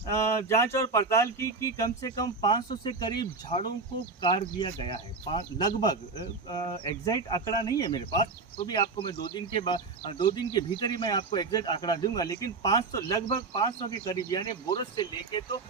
जांच और पड़ताल की कि कम से कम 500 से करीब झाड़ों को काट दिया गया है. लगभग एग्जैक्ट आंकड़ा नहीं है मेरे पास, तो भी आपको मैं 2 दिन के भीतर ही मैं आपको एग्जैक्ट आंकड़ा दूंगा. लेकिन 500, लगभग 500 के करीब, यानी बोरस से लेके तो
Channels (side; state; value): left; quieter; 4.0 dB